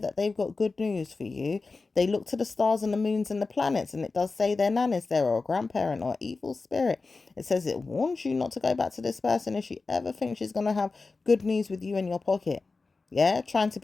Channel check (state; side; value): quieter; right; 3.9 dB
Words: they've got good news for you, they look to the stars and the moons and the planets, and it does say their nan is there, or a grandparent, or evil spirit. It says it warns you not to go back to this person if she ever thinks she's going to have good news with you in your pocket. Yeah, trying to